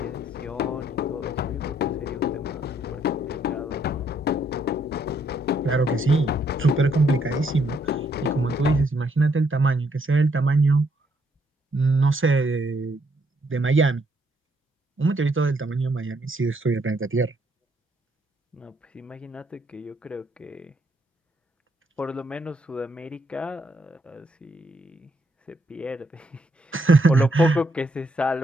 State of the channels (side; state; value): both; normal; correlation 0.72